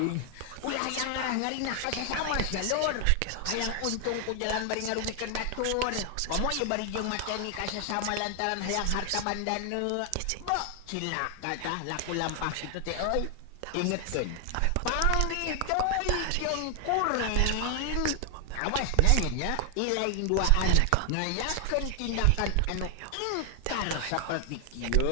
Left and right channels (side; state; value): both; different; correlation 0.00